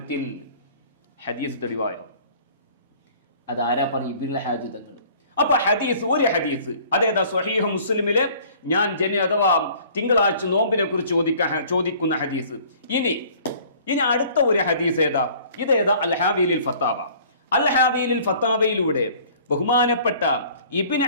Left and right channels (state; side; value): inverted; both; correlation -0.52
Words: ഹദീസ് തെളിവായോ? അതാരാ പറയും? ഇബ്നുൽ ഹാജി തങ്ങൾ. അപ്പൊ ഹദീസ്, ഒരു ഹദീസ് അതേതാ? സ്വഹീഹ് മുസ്ലിമിലെ ഞാൻ അഥവാ തിങ്കളാഴ്ച നോമ്പിനെ കുറിച്ച് ചോദിക്കുന്ന ഹദീസ്. ഇനി അടുത്ത ഒരു ഹദീസ് ഏതാ? ഇതേതാ? അൽ-ഹാവീലിൽ ഫത്താവ. അൽ-ഹാവീലിൽ ഫത്താവയിലൂടെ ബഹുമാനപ്പെട്ട ഇബ്നു